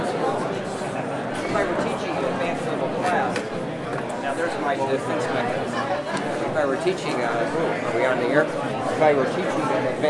If I were teaching an advanced level class, now there's my defense mechanism. If I were teaching, are we on the air? If I were teaching an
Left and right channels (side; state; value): both; identical; correlation 1.00